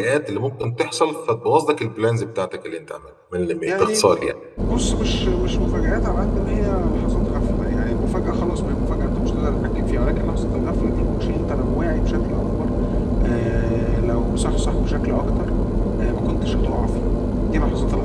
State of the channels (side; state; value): both; identical; correlation 1.00